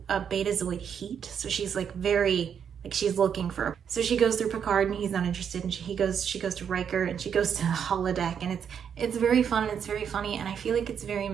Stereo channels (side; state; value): left; quieter; 7.8 dB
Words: a betazoid heat. So she's like very, like she's looking for, so she goes through Picard and he's not interested. And she goes to Riker and she goes to the holodeck, and it's very fun and it's very funny. And I feel like it's very